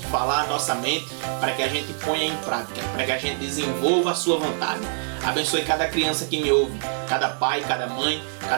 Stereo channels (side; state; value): left; silent; digital silence